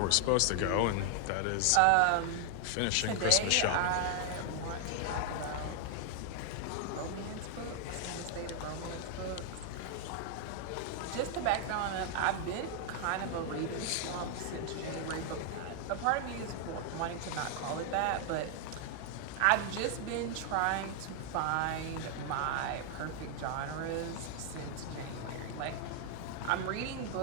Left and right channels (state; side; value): different; both; correlation 0.00